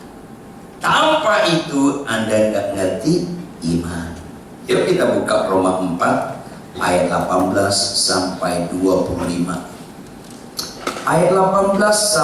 Tanpa itu Anda nggak ngerti iman. Yuk kita buka Roma 4 ayat 18 sampai 25. Ayat 18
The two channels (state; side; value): identical; both; correlation 1.00